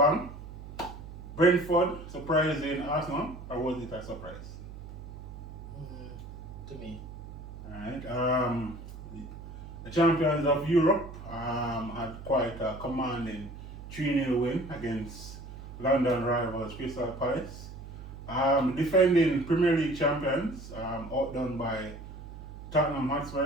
Brentford surprising Arsenal, or was it a surprise? To me. Alright. The champions of Europe had quite a commanding 3-0 win against London rivals Crystal Palace. Defending Premier League champions, outdone by Tottenham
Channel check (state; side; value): noise; right; hum, 13 dB below the sound